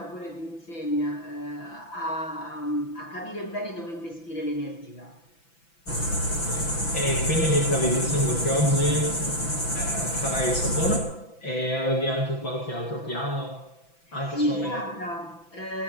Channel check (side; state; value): right; late; 6.0 ms